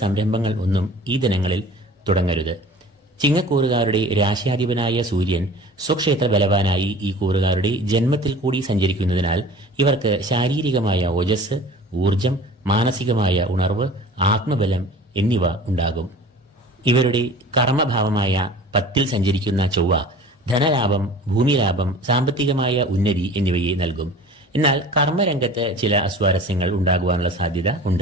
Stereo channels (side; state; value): both; normal; correlation 0.42